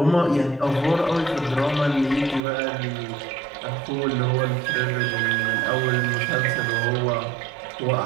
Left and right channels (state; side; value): drops out; left; at 2.4 s